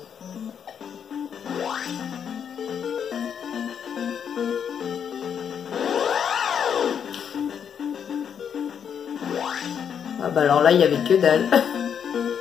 Ah bah alors là, il y avait que dalle.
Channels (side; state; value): right; quieter; 7.8 dB